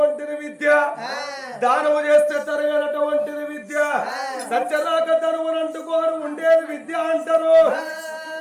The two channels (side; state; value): both; identical; correlation 1.00